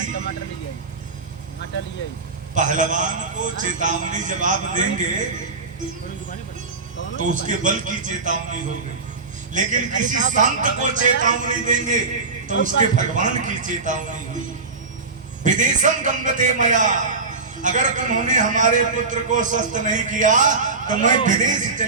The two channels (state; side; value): quieter; left; 4.2 dB